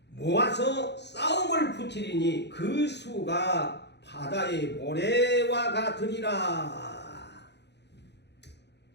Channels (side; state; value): right; late; 0.50 ms